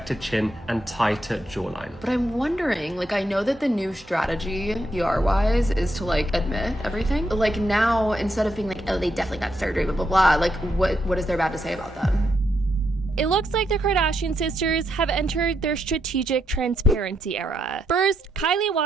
chin, and tighter jawline. But I'm wondering, like, I know that the new strategy, PR-wise, is to, like, admit everything. Like, now, instead of being like, oh, they definitely got surgery, blah, blah, blah, like, what is there bad to say about that? It looks like the Kardashian sisters have entered their strategic transparency era. First, Kylie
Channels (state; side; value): normal; both; correlation 0.80